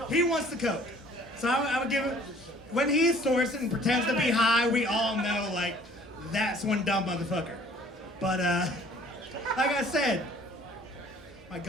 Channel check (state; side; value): normal; both; correlation 0.54